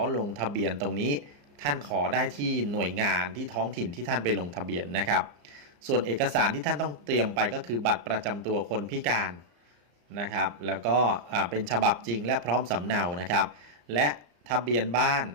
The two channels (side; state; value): left; late; 34 ms